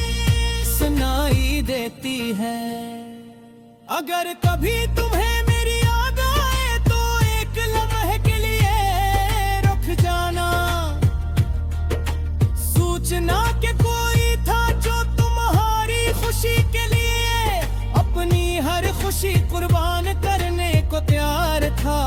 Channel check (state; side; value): identical; both; correlation 1.00